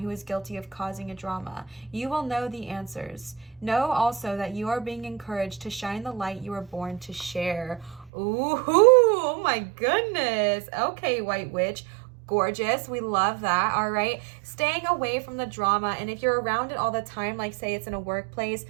is guilty of causing a drama? You will know the answers. Know also that you are being encouraged to shine the light you were born to share. Ooh, oh my goodness. Okay, White Witch. Gorgeous. We love that. All right. Staying away from the drama. And if you're around it all the time, like say it's in a workplace,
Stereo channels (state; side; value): drops out; left; at 8.1 s